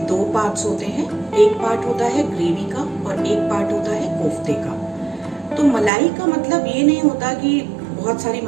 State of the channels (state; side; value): drops out; left; at 5.9 s